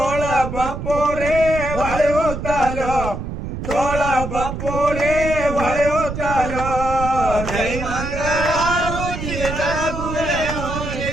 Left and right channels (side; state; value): right; noise; rumble, 6 dB below the sound